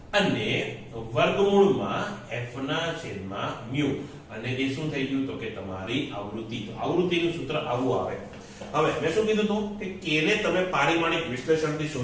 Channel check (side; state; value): both; identical; correlation 1.00